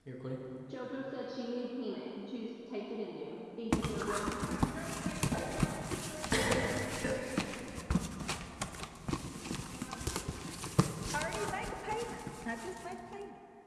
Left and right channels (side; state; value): both; identical; correlation 1.00